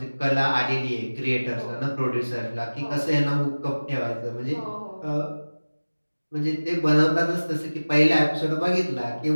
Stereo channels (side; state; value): both; inverted; correlation -1.00